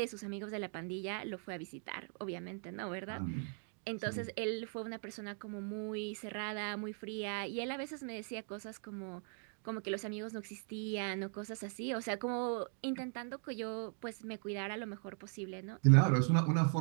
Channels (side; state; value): left; silent; 51 dB below the other